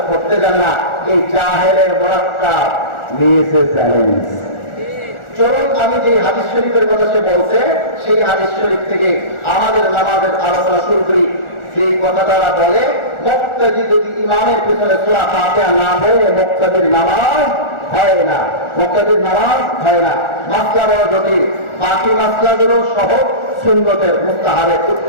পড়তে জানে না, এই জাহেলের মোরাক্কাব নিয়েছে চ্যালেঞ্জ। চলুন আমি যে হাদিস শরীফের কথা সে বলছে, সেই হাদিস শরীফ থেকে আমাদের নামাজের আলোচনা শুরু করি। সেই কথা তারা বলে, মুক্তাদি যদি ইমামের পিছনে সূরা ফাতিহা না পড়ে মুক্তাদির নামাজ হয় না, মুক্তাদির নামাজ হয় না। মাসলা বড় জটিল, বাকি মাসলাগুলো সহজ, সুন্নতের মুস্তাহাবের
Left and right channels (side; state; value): right; late; 1.4 ms